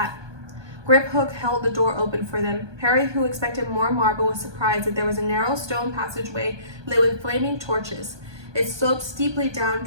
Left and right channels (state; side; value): late; left; 1.2 ms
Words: Griphook held the door open for them. Harry, who expected more marble, was surprised that there was a narrow stone passageway lit with flaming torches. It sloped steeply